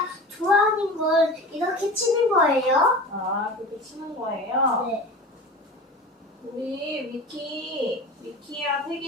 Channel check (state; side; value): normal; both; correlation 0.34